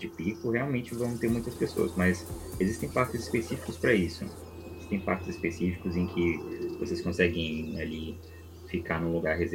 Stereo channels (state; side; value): identical; both; correlation 1.00